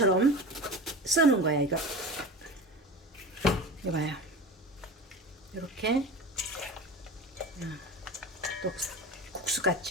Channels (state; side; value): normal; both; correlation 0.31